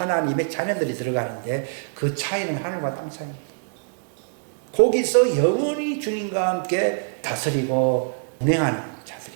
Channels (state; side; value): silent; left; digital silence